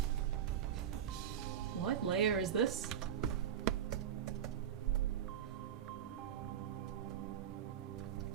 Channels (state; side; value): quieter; left; 9.3 dB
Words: What layer is this?